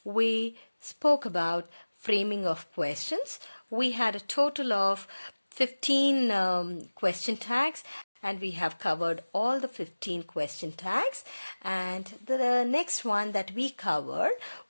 we spoke about framing of questions. We had a total of 15 question tags, and we have covered all the 15 question tags. And the next one that we covered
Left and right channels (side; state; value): both; inverted; correlation -1.00